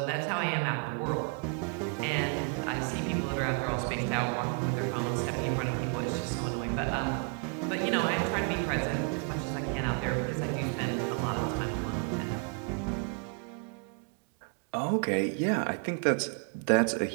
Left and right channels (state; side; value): quieter; left; 37.5 dB